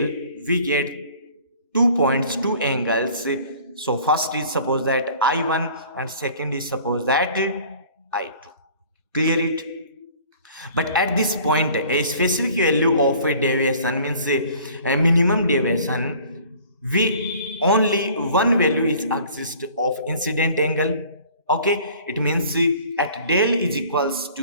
we get 2 points, 2 angles. So first is suppose that I1 and second is suppose that I2. Clear it? But at this point, a specific value of a deviation means a minimum deviation, we only one value is exist of incident angle. Okay, it means at del is equals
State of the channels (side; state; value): both; inverted; correlation -0.50